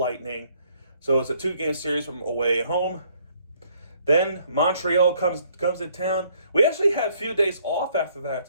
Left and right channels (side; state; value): both; inverted; correlation -0.65